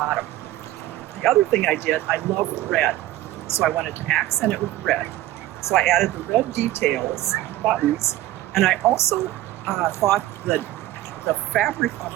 The other thing I did, I love red, so I wanted to accent it with red. So I added the red details, buttons, and I also thought that the fabric on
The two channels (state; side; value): quieter; left; 15.3 dB